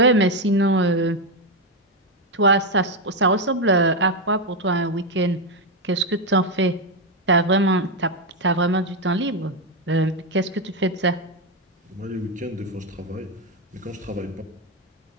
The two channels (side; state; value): both; normal; correlation 0.06